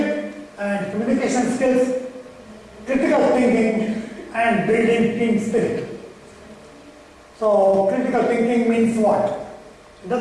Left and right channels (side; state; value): both; identical; correlation 1.00